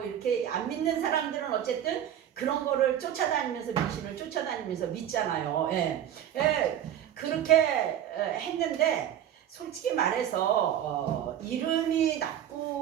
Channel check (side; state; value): left; quieter; 10.5 dB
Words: 이렇게 안 믿는 사람들은 어쨌든 그런 거를 쫓아다니면서 미신을 쫓아다니면서 믿잖아요. 예. 그렇게 했는데 솔직히 말해서 이름이